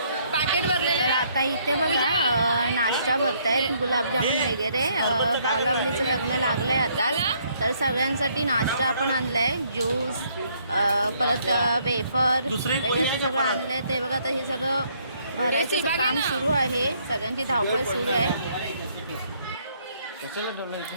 पॅकेट भरलेले तर आता इथे बघा नाश्ता भरतायत गुलाबजामुन वगैरे बावलावलीचं लग्न लागलंय आता तर सगळ्यांसाठी नाश्ता आपण आणलाय ज्यूस परत वेफर वगैरे सगळं आणलंय ते बघा आता हे सगळं भरायचं काम सुरू आहे सगळ्यांची धावपळ सुरू आहे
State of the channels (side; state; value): both; inverted; correlation -0.67